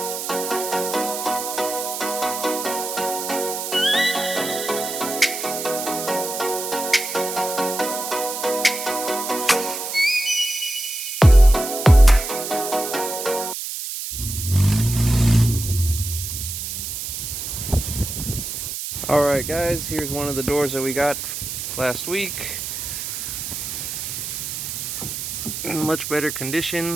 Alright guys, here's one of the doors that we got last week. In much better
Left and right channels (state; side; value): noise; right; hiss, 5 dB below the sound